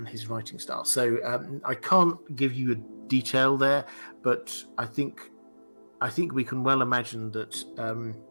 his writing style. So I can't give you a detail there, but I think we can well imagine that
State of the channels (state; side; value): inverted; both; correlation -1.00